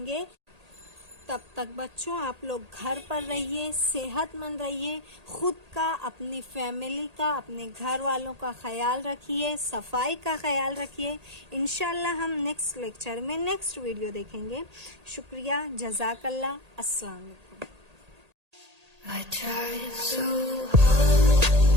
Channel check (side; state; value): left; late; 1.8 ms